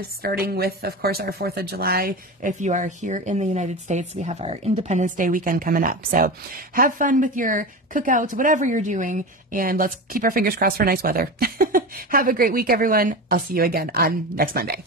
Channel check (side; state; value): both; normal; correlation 0.26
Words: starting with, of course, our 4th of July. If you are here in the United States, we have our Independence Day weekend coming up. So have fun with your cookouts, whatever you're doing, and let's keep our fingers crossed for nice weather. Have a great week, everyone. I'll see you again on next Monday.